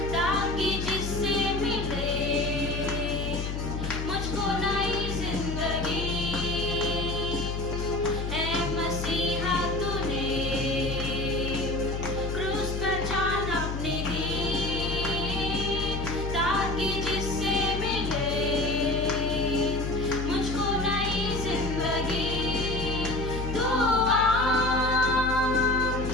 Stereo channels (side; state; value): left; noise; hum, 4 dB below the sound